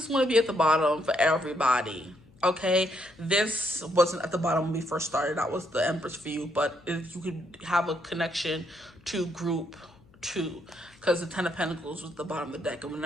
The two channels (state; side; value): noise; left; hum, 28 dB below the sound